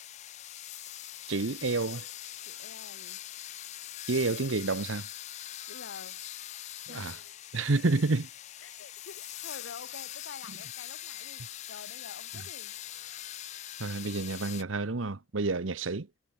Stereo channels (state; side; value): normal; both; correlation 0.26